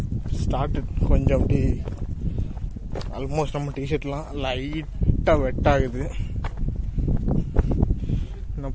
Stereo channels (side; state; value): both; identical; correlation 1.00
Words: ஸ்டார்ட் கொஞ்சம் அப்படி ஆல்மோஸ்ட் நம்ம டிஷர்ட்லாம் லைட்டாக வெட் ஆகுது. என்ன